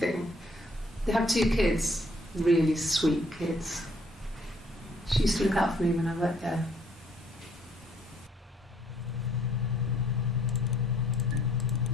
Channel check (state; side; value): normal; both; correlation 0.64